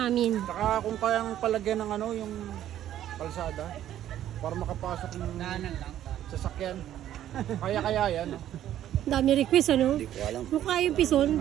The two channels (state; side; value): quieter; left; 11.8 dB